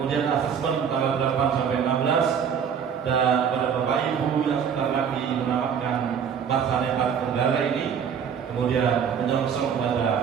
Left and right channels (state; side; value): quieter; left; 7.5 dB